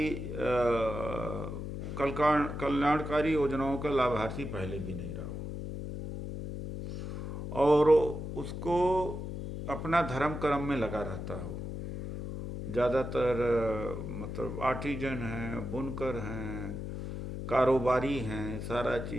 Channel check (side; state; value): left; noise; hum, 6 dB below the sound